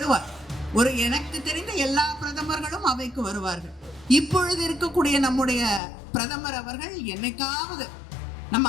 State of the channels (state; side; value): drops out; right; at 5.8 s